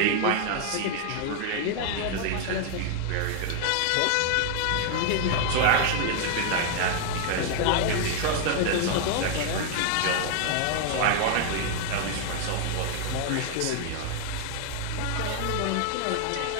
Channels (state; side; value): different; both; correlation 0.00